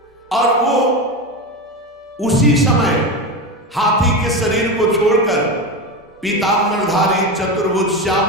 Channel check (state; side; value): normal; both; correlation 0.19